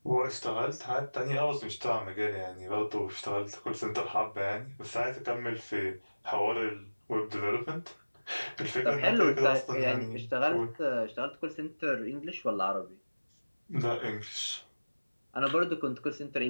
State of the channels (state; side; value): inverted; both; correlation -1.00